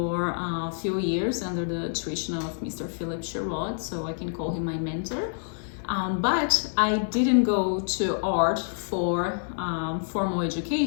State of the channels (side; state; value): right; silent; digital silence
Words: a few years under the tuition of Mr. Philip Sherrod, so I can call him my mentor. But I didn't go to art for formal